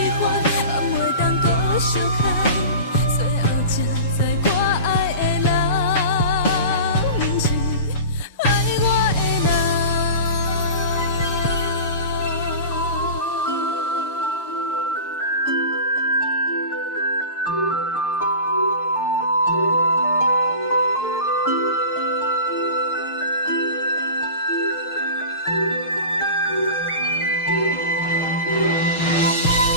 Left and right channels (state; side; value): inverted; both; correlation -0.33